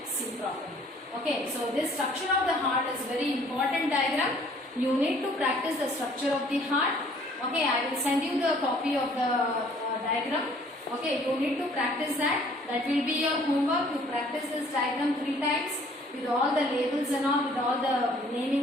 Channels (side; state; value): both; normal; correlation 0.57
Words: see properly. Okay, so this structure of the heart is very important diagram. You need to practice the structure of the heart. Okay, I will send you the copy of the diagram. Okay, you need to practice that. That will be your homework. You practice this diagram 3 times with all the labels and all, with all the